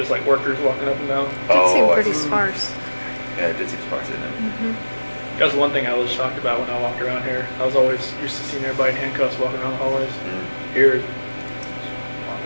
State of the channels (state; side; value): inverted; both; correlation -1.00